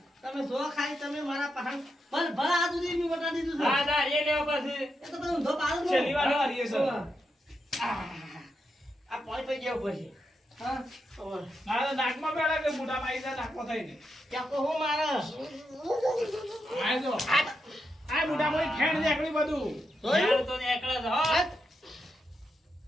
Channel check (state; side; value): normal; both; correlation 0.85